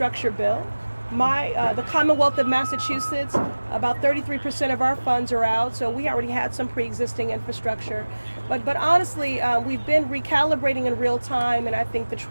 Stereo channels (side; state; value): both; inverted; correlation -1.00